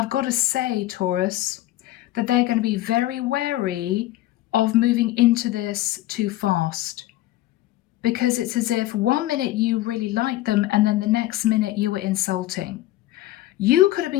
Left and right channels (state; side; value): quieter; right; 15.8 dB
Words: got to say, Taurus, that they're going to be very wary of moving into this too fast. Because it's as if 1 minute you really liked them and then the next minute you were insulting. You could have